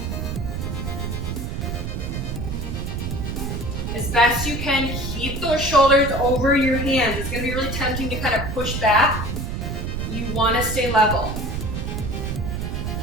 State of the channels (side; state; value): right; noise; rumble, 4 dB below the sound